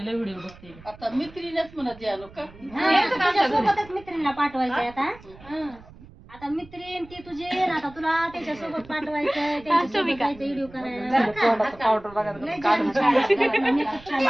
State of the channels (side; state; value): right; noise; rumble, 21 dB below the sound